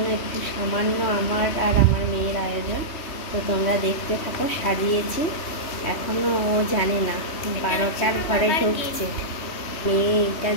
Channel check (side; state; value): right; late; 3.1 ms